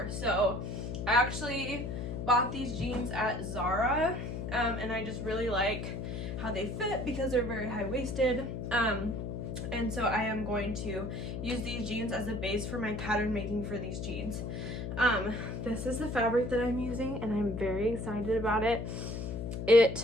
So I actually bought these jeans at Zara, and I just really like how they fit because they're very high-waisted. And so I am going to use these jeans as a base for my pattern making for these jeans. This is the fabric that I'm using, and I'm very excited about it.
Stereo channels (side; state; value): left; noise; hum, 5 dB below the sound